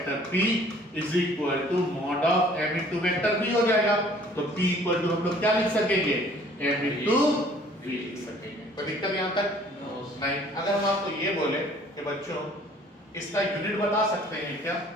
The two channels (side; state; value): both; normal; correlation 0.55